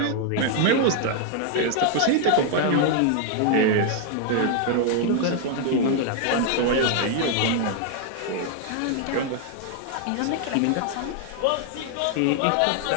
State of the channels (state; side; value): different; both; correlation 0.00